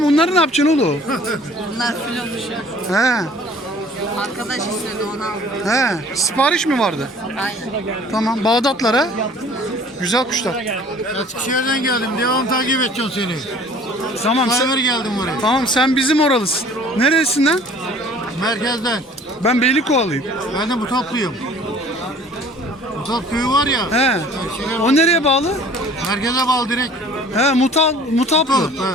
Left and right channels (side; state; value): both; normal; correlation 0.50